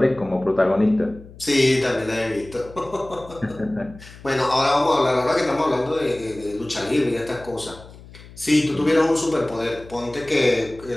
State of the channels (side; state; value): left; noise; hum, 19 dB below the sound